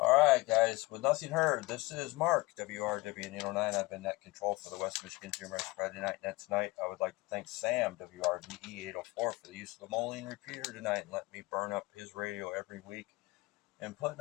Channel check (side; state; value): right; quieter; 22.3 dB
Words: right, guys. With nothing heard, this is Mark, WRWN 809. I've been net control for the West Michigan GMRS Friday Night Net tonight. I would like to thank Sam, WRVE 804, for the use of the Moline repeater tonight and letting me burn up his radio every week and putting